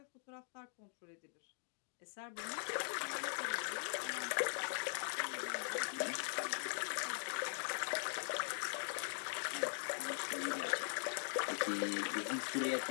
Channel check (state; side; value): silent; right; digital silence